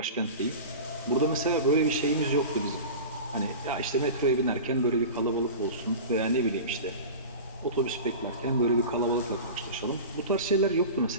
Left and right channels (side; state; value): both; inverted; correlation -0.32